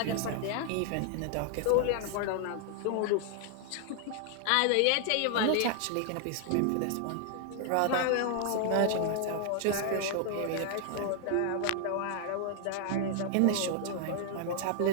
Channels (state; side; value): different; both; correlation 0.00